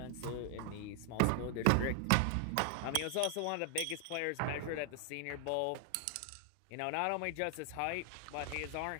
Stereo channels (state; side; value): different; both; correlation 0.00